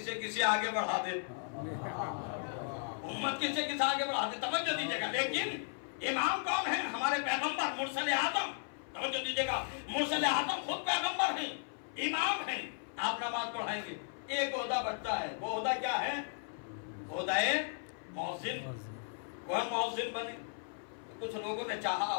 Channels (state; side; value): silent; right; 54 dB below the other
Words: کسی آگے بڑھا دے، امت کسی آگے بڑھا دے، توجہ دیجیے گا۔ لیکن امام کون ہے؟ ہمارے پیغمبر مرسل اعظم، توجہ دیجیے گا، مرسل اعظم خود پیغمبر ہیں، امام ہیں، آپ نماز پڑھائیں گے۔ ایک عہدہ بچتا ہے، وہ عہدہ کیا ہے؟ عہدہ مؤذن، وہ مؤذن بنے۔ کچھ لوگوں نے چاہا،